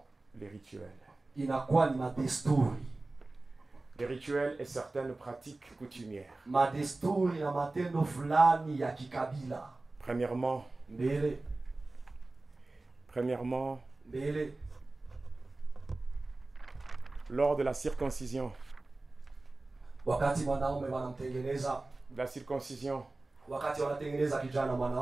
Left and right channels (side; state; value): left; quieter; 3.1 dB